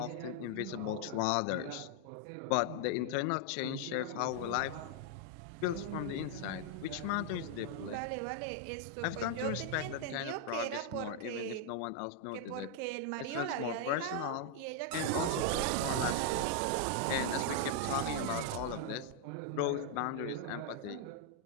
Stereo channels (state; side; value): different; both; correlation 0.00